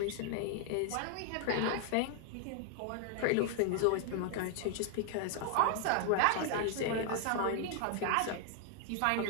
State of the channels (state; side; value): different; both; correlation 0.00